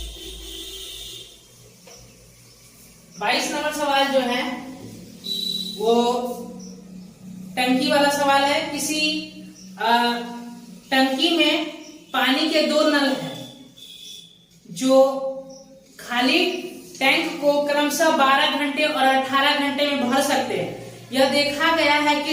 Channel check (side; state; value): both; identical; correlation 1.00